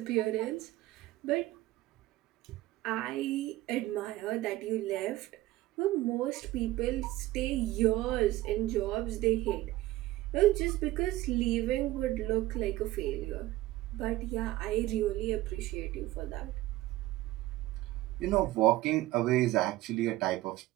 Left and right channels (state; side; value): quieter; left; 16.9 dB